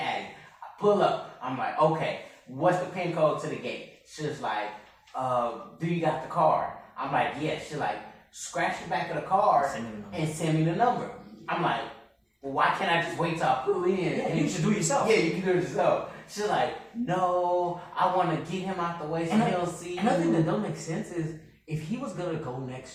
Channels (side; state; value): both; identical; correlation 1.00